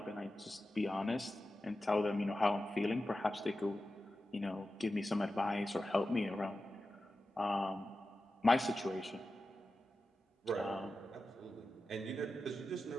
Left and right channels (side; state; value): both; normal; correlation 0.93